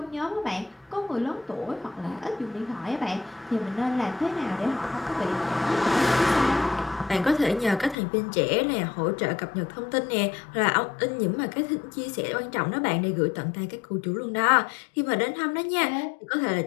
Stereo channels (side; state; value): right; drops out; at 8.0 s